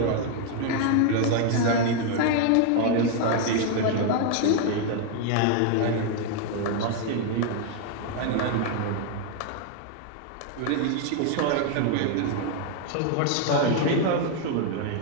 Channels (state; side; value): different; both; correlation 0.00